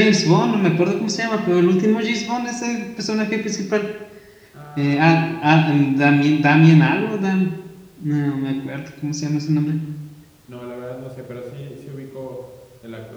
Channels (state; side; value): identical; both; correlation 1.00